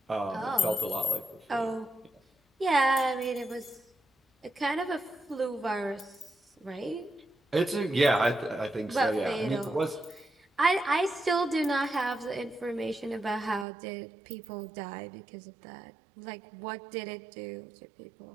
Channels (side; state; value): left; drops out; at 13.7 s